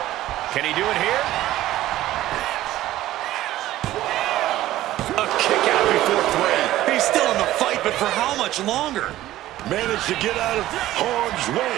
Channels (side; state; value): left; quieter; 14.8 dB